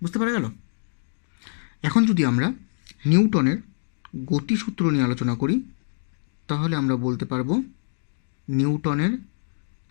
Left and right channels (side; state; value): right; silent; digital silence